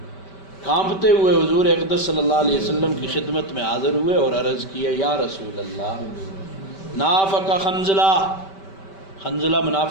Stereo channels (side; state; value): right; late; 5.2 ms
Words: کانپتے ہوئے حضور اقدس صلی اللہ علیہ وسلم کی خدمت میں حاضر ہوئے اور عرض کیا، یا رسول اللہ، نافق حنظلہ، حنظلہ